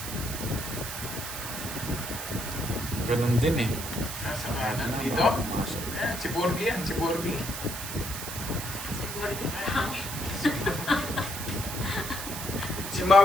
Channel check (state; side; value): noise; right; hiss, 7 dB below the sound